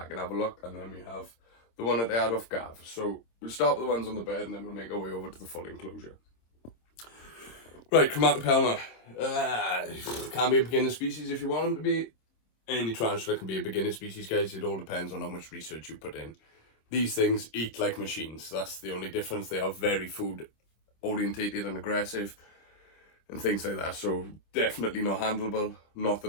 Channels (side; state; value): right; late; 26 ms